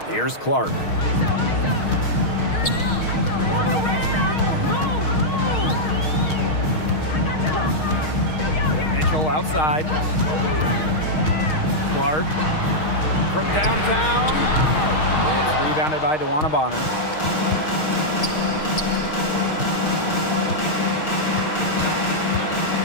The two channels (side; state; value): right; late; 6.4 ms